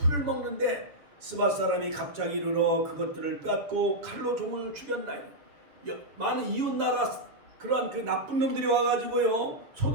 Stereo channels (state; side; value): late; left; 7.0 ms